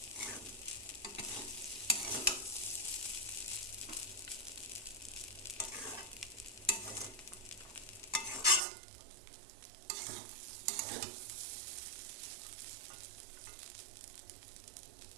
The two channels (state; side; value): drops out; left; at 8.6 s